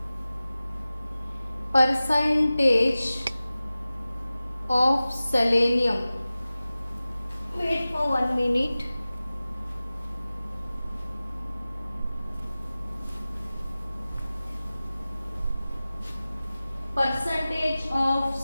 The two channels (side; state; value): both; inverted; correlation -0.96